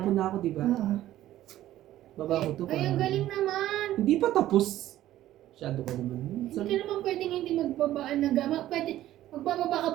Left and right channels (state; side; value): quieter; left; 13.8 dB